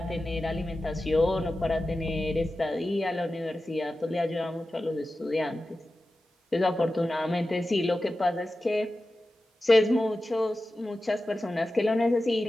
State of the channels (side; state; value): both; normal; correlation 0.94